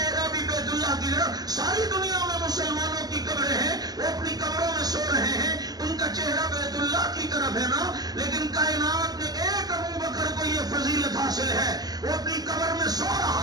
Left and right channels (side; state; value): left; late; 0.19 ms